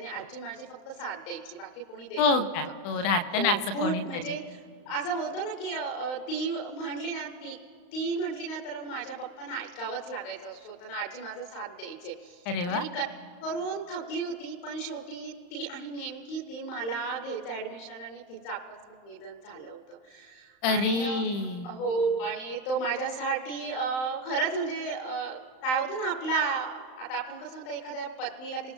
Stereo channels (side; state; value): right; late; 35 ms